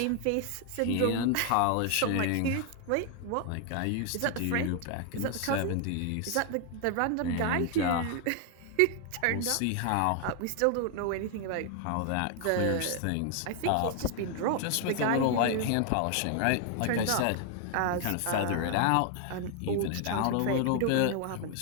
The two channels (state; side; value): different; both; correlation 0.00